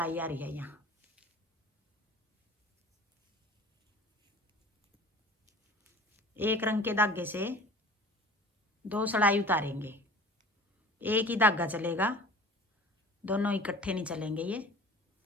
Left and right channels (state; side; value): normal; both; correlation 0.43